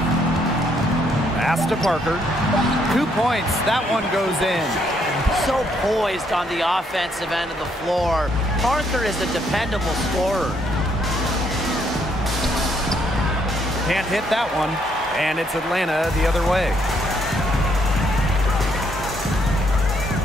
Pass to Parker. 2 points. That one goes in. So poised on the offensive end of the floor. Parker is a dependable scorer. Can't hit that one. And it's Atlanta the other way.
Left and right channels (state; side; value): normal; both; correlation 0.71